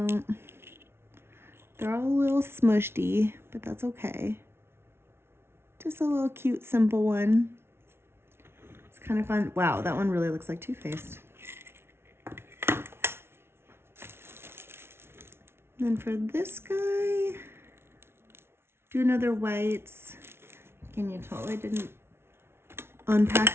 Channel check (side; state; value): left; late; 0.12 ms